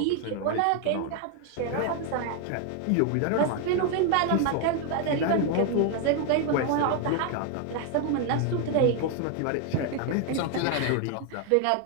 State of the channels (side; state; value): both; different; correlation 0.01